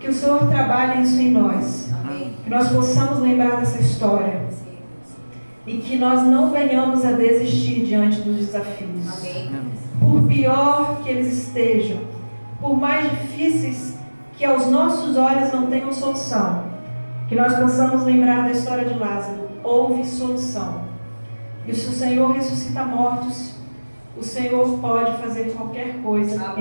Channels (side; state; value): both; inverted; correlation -1.00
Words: Que o Senhor trabalhe isso em nós. Que nós possamos lembrar dessa história. E que nós não venhamos a desistir diante dos desafios. Por pior que eles estejam, por mais difíceis que aos nossos olhos não tenham solução, que nós possamos lembrar da história de Lázaro. Houve solução. E se o Senhor ressuscita mortos, o Senhor pode fazer qualquer coisa